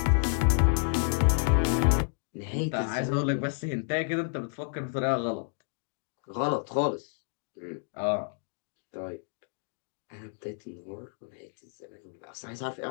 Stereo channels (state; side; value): silent; right; 58 dB below the other